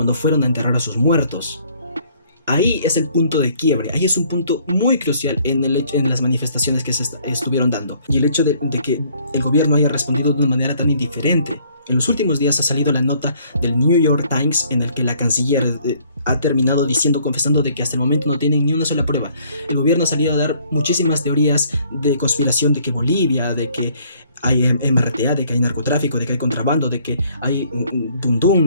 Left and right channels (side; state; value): both; inverted; correlation -0.62